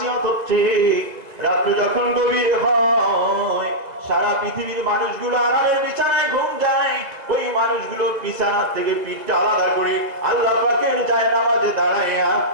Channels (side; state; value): left; late; 2.0 ms